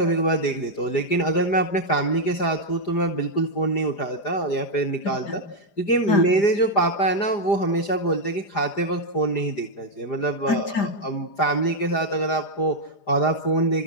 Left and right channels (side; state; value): right; late; 5.0 ms